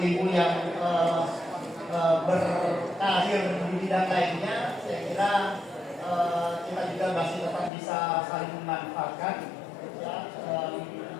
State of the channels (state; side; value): drops out; right; at 7.7 s